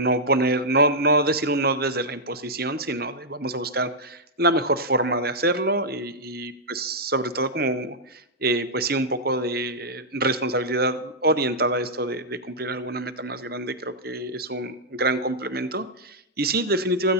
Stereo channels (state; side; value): normal; both; correlation -0.06